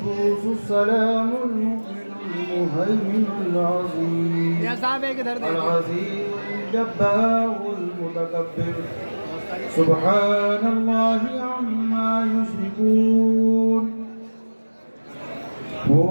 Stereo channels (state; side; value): inverted; both; correlation -1.00